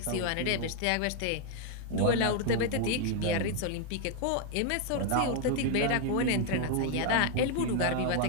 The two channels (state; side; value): different; both; correlation 0.00